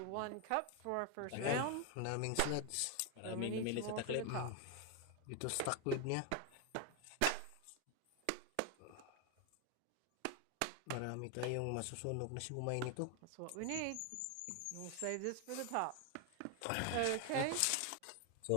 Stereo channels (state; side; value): different; both; correlation 0.01